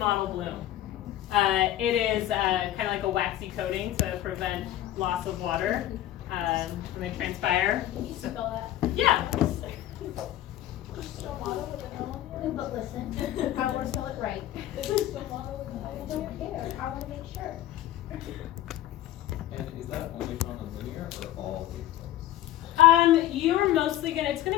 bloom. It is kind of like a waxy coating to prevent loss of water when they transpire. Can you spell that? Yeah. Stomato with an L on the end? But listen, I want to spell it right. Stomato with an L. I don't care. I want to make sure. And is that only found on linear or all leaf close? You're mostly it's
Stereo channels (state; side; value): quieter; right; 13.5 dB